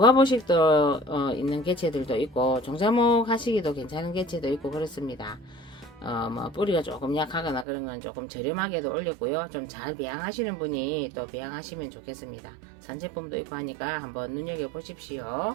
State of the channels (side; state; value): left; drops out; at 7.7 s